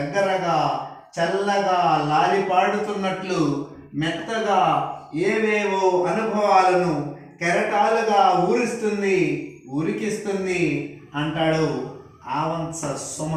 చల్లగా లాలిపాడుతున్నట్లు మెత్తగా ఏవేవో అనుభవాలను కెరటాలుగా ఉరికిస్తుంది అంటాడు ఆవంస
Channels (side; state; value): both; identical; correlation 1.00